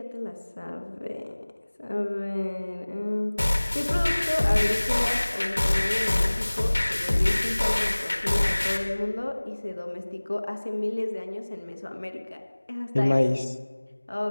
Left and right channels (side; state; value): both; inverted; correlation -1.00